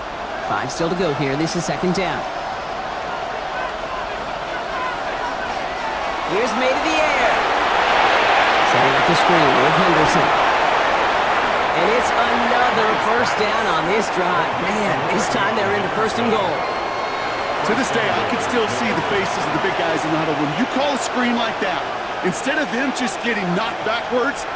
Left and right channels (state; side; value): identical; both; correlation 1.00